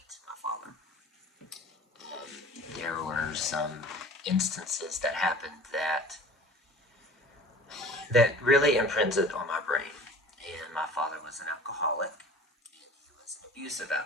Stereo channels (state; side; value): normal; both; correlation 0.43